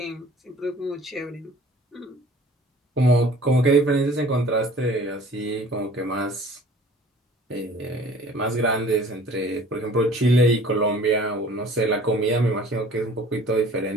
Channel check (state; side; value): normal; both; correlation 0.49